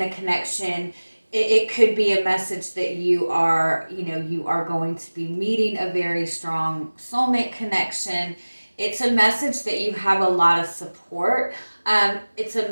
a connection. It could be a message that you are going to be meeting a very strong soulmate connection. It's a message that you have a lot of support. It's a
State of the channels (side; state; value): both; inverted; correlation -1.00